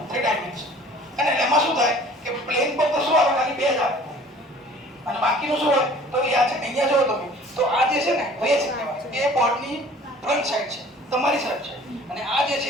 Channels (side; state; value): both; normal; correlation 0.49